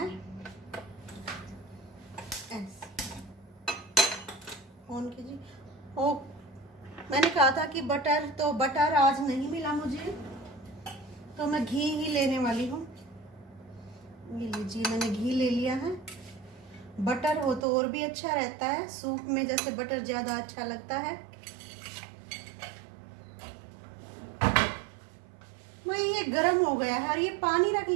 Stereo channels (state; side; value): drops out; left; at 17.6 s